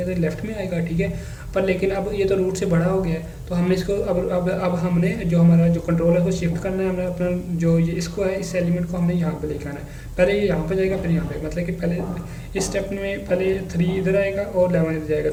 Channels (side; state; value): both; identical; correlation 1.00